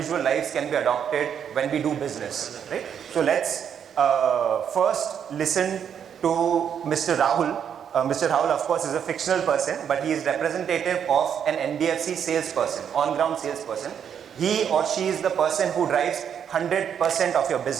lives can be adopted when we do business, right? So let's first listen to Mr. Rahul. Mr. Rahul, of course, is a fictional person, but he is representative of an NBFC salesperson, on-ground salesperson. He or she is the person who drives 100% of your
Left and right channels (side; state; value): left; quieter; 8.2 dB